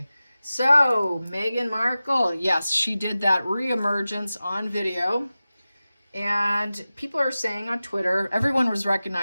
So, Meghan Markle, yes, she did that reemergence on video. And people are saying on Twitter, everyone was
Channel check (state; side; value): inverted; both; correlation -0.96